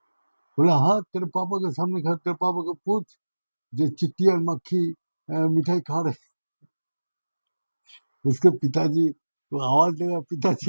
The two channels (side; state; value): both; inverted; correlation -1.00